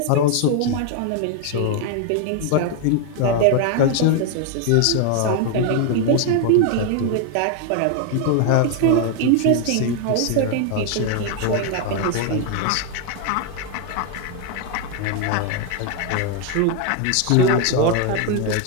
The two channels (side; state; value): both; different; correlation 0.01